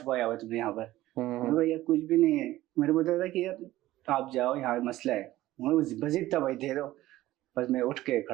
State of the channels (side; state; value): left; quieter; 16.0 dB